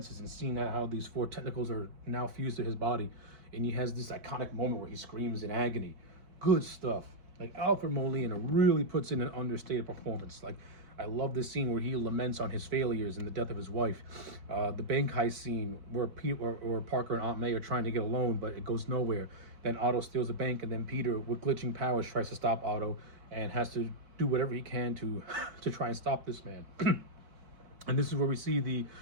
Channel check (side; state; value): left; late; 4.5 ms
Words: and seeing how these four tentacles are now fused to his body, and he has this iconic moment where he screams in agony. Good stuff. Like, Alfred Molina really puts in an understated performance. Like, I love this scene where he laments on his failures and the death of his wife. The bank heist scene where Parker and Aunt May are trying to get a loan, but it goes nowhere. Then Otto steals the bank, and then Peter, with glitching powers, tries to stop Otto and has to do whatever he can to try and stop this man. And this is where we see the